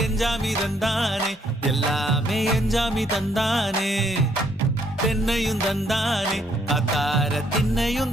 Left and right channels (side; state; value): both; normal; correlation 0.69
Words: எஞ்சாமி தந்தானே எல்லாமே எஞ்சாமி தந்தானே தென்னையும் தந்தானே காத்தார திண்ணையும்